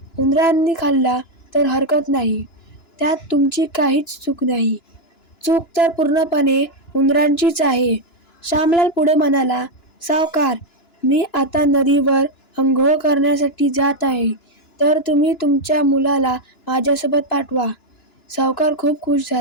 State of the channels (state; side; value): late; right; 2.9 ms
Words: उंदरांनी खाल्ला तर हरकत नाही. त्यात तुमची काहीच चूक नाही. चूक तर पूर्णपणे उंदरांचीच आहे." श्यामलाल पुढे म्हणाला, "सावकार, मी आता नदीवर अंघोळ करण्यासाठी जात आहे, तर तुम्ही तुमच्या मुलाला माझ्यासोबत पाठवा." सावकार खूप खुश